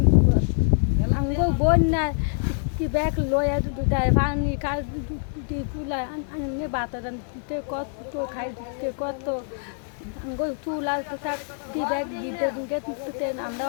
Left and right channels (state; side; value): silent; right; digital silence